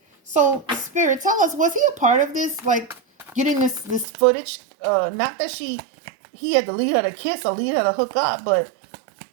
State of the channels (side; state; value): left; drops out; at 4.0 s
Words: So Spirit, tell us, was he a part of this? Like, getting this footage? Not that he had to lead her to kiss or lead her to hook up, but